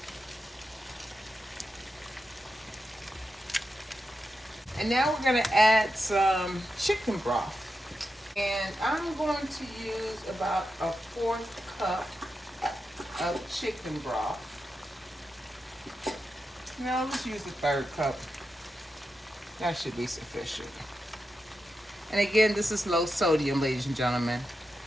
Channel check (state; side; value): normal; both; correlation 0.88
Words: And now we're going to add some chicken broth. And I'm going to use about a 1/4 cup of chicken broth. No, let's use the 1/3 cup. That should be sufficient. And again, this is low sodium, ladies and gentlemen.